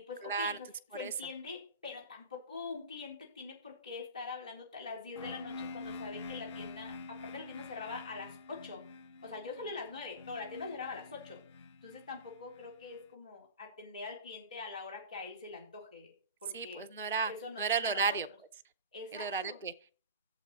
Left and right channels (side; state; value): both; inverted; correlation -0.33